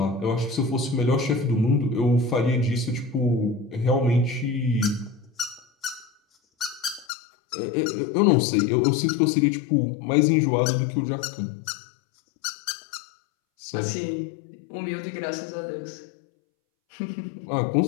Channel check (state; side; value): drops out; right; at 7.1 s